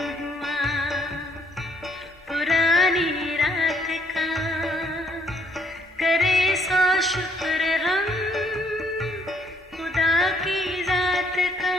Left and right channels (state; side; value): normal; both; correlation 0.68